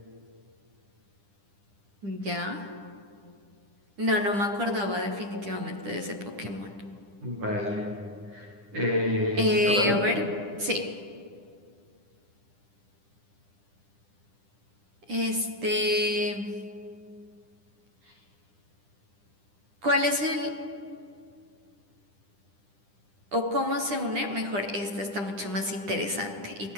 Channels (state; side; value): late; left; 10 ms